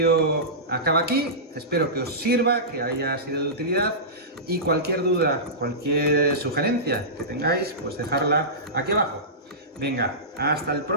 acaba aquí. Espero que os sirva, que haya sido de utilidad, y cualquier duda, cualquier sugerencia que tengáis, pues dejarla aquí abajo. Venga, hasta el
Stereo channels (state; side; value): normal; both; correlation -0.19